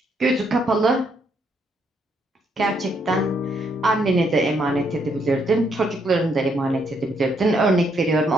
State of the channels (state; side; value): normal; both; correlation 0.73